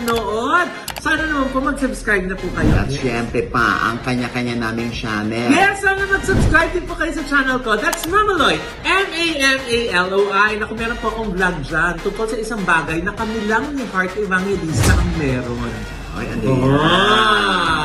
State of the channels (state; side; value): identical; both; correlation 1.00